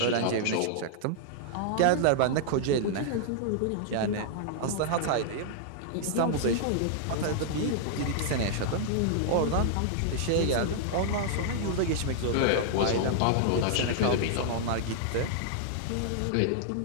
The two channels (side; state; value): both; different; correlation -0.01